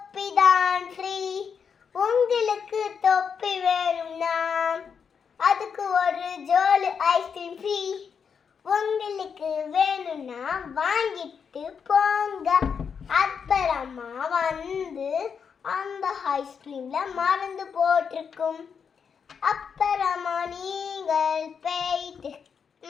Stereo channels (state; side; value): quieter; right; 6.6 dB